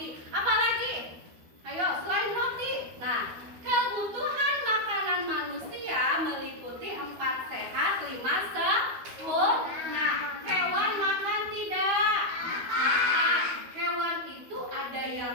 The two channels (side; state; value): left; late; 12 ms